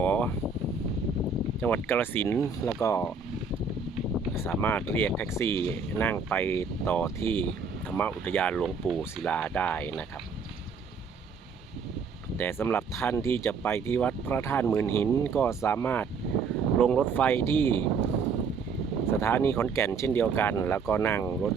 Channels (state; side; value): quieter; left; 5.0 dB